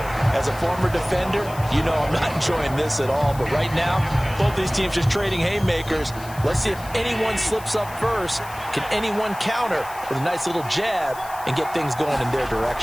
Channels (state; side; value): noise; left; hiss, 18 dB below the sound